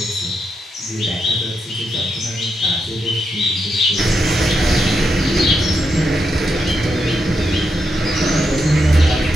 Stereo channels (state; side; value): normal; both; correlation 0.83